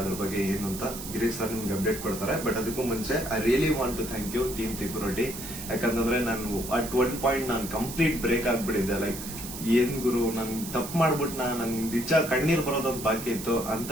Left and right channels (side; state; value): right; noise; hiss, 10 dB below the sound